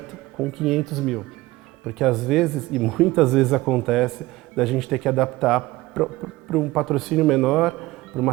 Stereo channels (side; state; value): left; quieter; 19.2 dB